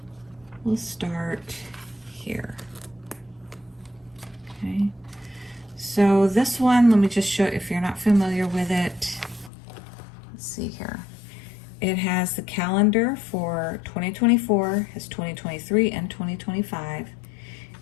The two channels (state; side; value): drops out; right; at 9.5 s